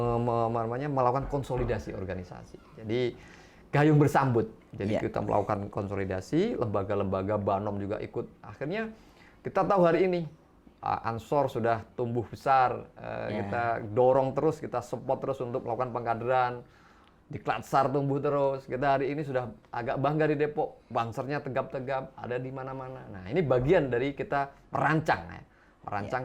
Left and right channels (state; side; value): identical; both; correlation 1.00